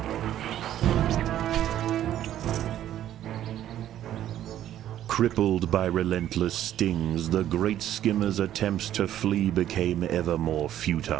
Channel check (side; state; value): left; quieter; 11.8 dB